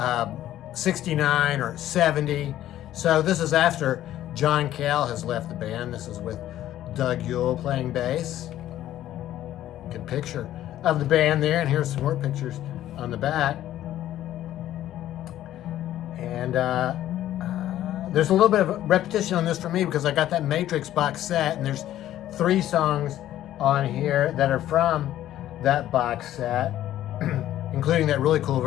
69 or 70. So this is after John Cale has left the band. This is with Doug Yule playing bass. Good picture of the band there, and here's some more pictures on the back. And there's a little bit of repetition on this for me because I got that Matrix box set, and there's 3 songs on here that are from that box set, including that really cool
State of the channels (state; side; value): quieter; right; 12.9 dB